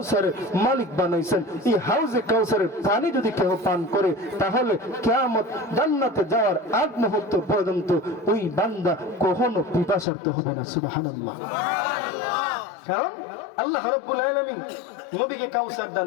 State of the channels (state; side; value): drops out; right; at 10.1 s